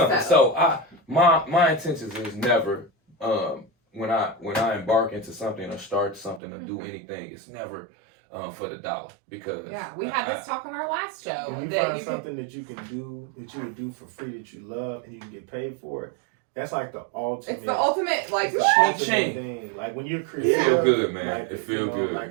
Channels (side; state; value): left; drops out; at 6.4 s